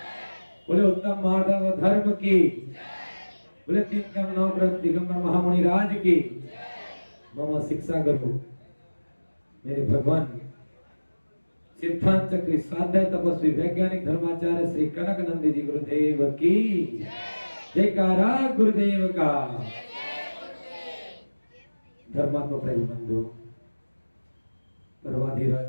बोले उत्तम माधव धर्म की, बोले 3 कम 9 ग्रंथ दिगंबर महामुनि राज की, मम शिक्षा गुरु मेरे भगवान सिद्धांत चक्री स्वाध्याय तपस्वी वैज्ञानिक धर्माचार्य श्री कनक नंदी जी गुरुदेव की जयकारा गुरुदेव का। धर्मात्मा प्रेम बंधु पर्वाधिराज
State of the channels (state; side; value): inverted; both; correlation -1.00